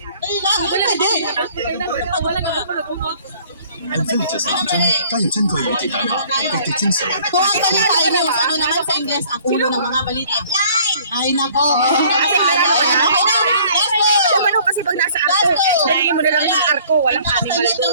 Ay lang, hindi pwede. 很奋力这是当真，加入珍貴與鐵蛋白，積極精神。 Kung ang balita ay news, ano naman sa Ingles ang ulo ng mga balita? Ay nako. Ano kasi pag nasa arko, hindi mo na lang yung arko, walang animal. Talit ng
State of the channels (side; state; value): both; inverted; correlation -0.55